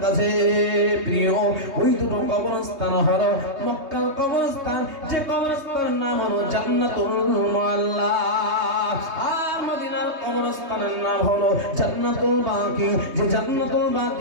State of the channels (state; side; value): late; left; 3.2 ms